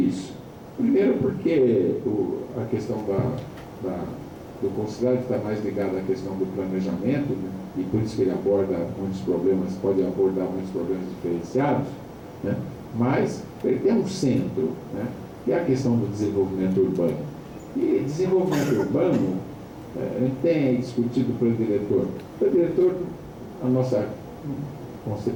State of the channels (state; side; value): identical; both; correlation 1.00